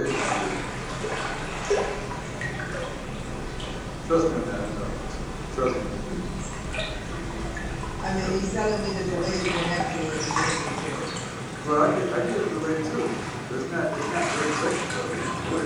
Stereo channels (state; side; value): identical; both; correlation 1.00